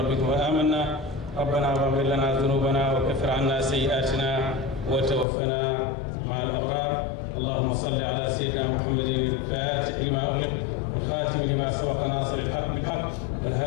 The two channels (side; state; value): right; drops out; at 5.2 s